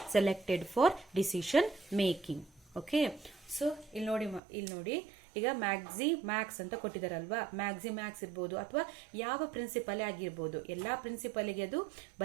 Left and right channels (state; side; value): drops out; left; at 4.4 s